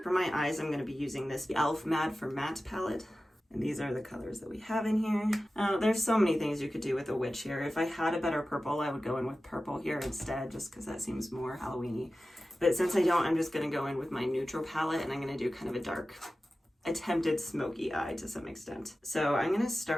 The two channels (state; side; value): normal; both; correlation 0.95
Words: For my eyes, I'm going to be using this e.l.f. Matte for Matte palette. And these are the colors that we have in here. There's so many things you could do with a witch here. If I had a better purple, I would go in with purple here instead, just because that seems more Halloween-y. But since I don't, I'm just going to go in with my neutral palette, and I'm going to do kind of a dark, attempted smoky eye to some extent. So I'm going to